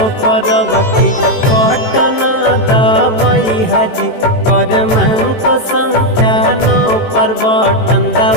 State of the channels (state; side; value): late; right; 18 ms